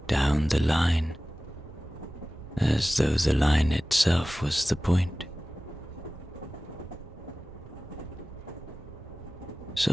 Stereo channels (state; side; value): normal; both; correlation 0.97